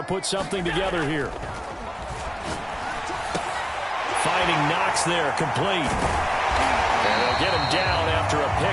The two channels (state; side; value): identical; both; correlation 1.00